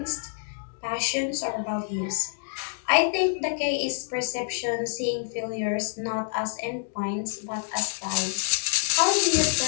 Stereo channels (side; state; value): right; silent; digital silence